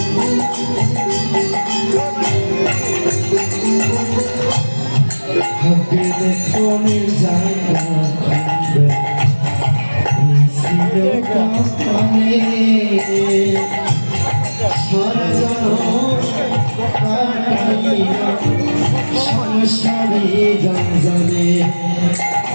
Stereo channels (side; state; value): both; inverted; correlation -1.00